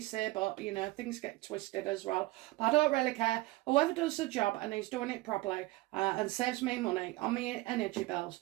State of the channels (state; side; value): quieter; left; 20.0 dB